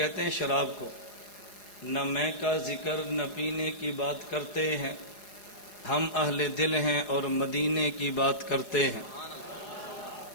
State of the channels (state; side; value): late; right; 4.6 ms